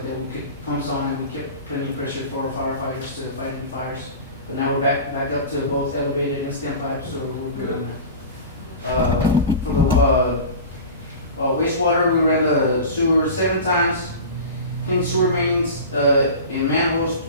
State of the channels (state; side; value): inverted; both; correlation -0.33